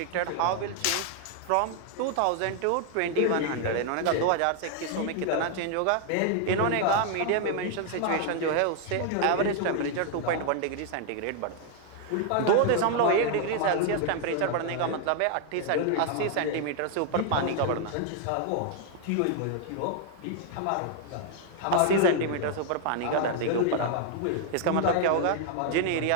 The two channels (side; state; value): both; different; correlation 0.00